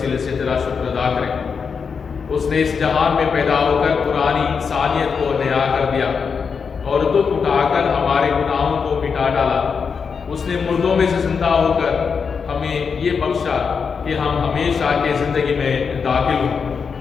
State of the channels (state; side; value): quieter; right; 5.8 dB